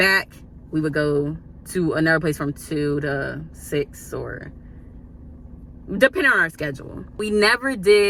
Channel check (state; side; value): identical; both; correlation 1.00